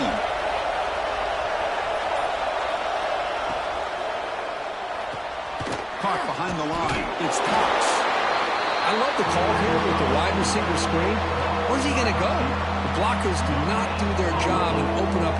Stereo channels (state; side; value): identical; both; correlation 1.00